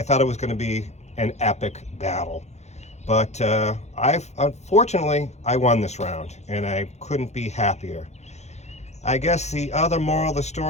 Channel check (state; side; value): late; right; 0.32 ms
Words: thought it was going to be an epic battle. But unfortunately, I won this round, and I couldn't be happier. I guess the other moral of the